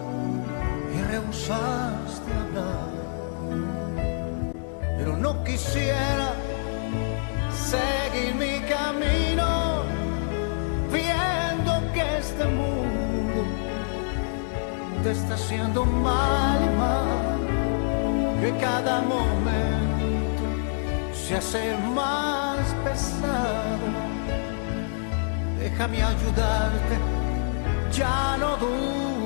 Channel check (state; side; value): silent; right; digital silence